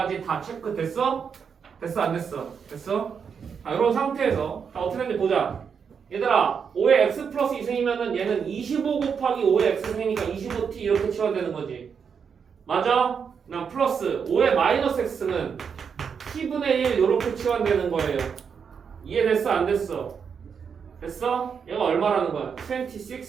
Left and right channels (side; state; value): left; quieter; 6.6 dB